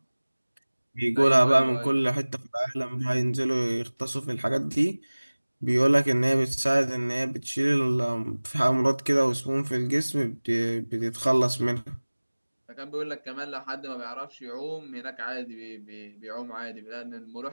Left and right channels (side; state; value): both; inverted; correlation -1.00